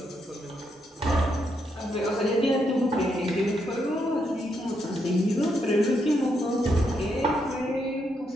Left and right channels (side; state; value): both; normal; correlation 0.79